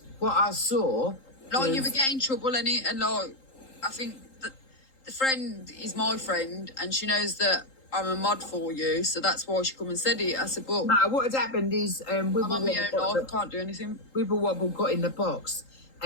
What I saw, like you were getting trouble in it, and like I think that the friend is my friend, and she knows that I'm a mod for you, so that's why she come and said it. I said, but no, what had happened is I'm on my own life, I can't do anything. Wibble Wobble got in the box,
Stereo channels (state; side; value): late; right; 3.8 ms